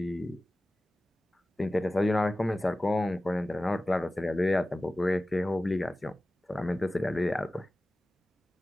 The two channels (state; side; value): normal; both; correlation 0.97